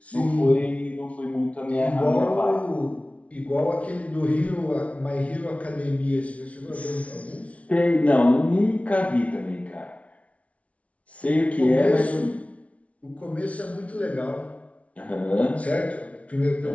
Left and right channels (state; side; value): late; right; 0.065 ms